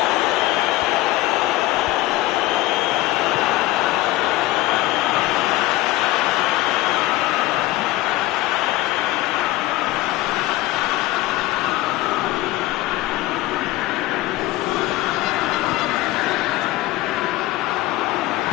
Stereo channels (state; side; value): quieter; right; 17.1 dB